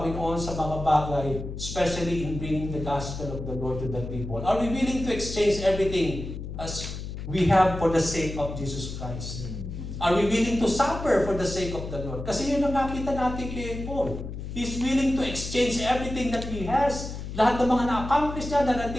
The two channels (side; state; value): left; noise; hum, 8 dB below the sound